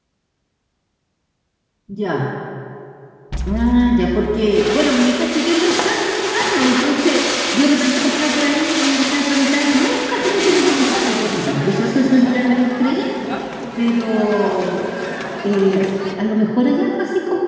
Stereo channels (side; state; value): both; identical; correlation 1.00